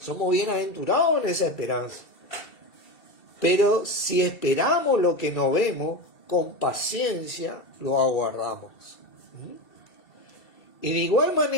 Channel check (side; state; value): right; late; 2.7 ms